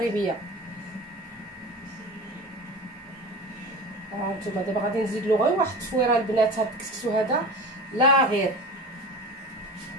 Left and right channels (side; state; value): both; normal; correlation 0.32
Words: هانتوما دابا غادي نزيد له غير واحد التفويره البنات. هاد الكسكسو هذا لا غير.